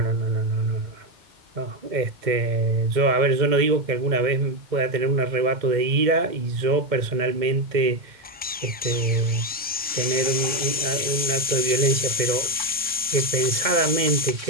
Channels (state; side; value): normal; both; correlation 0.10